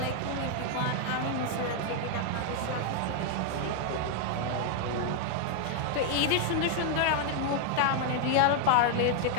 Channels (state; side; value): different; both; correlation 0.00